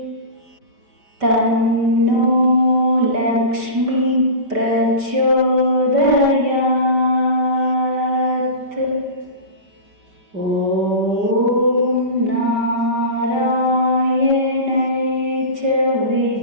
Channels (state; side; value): late; left; 5.1 ms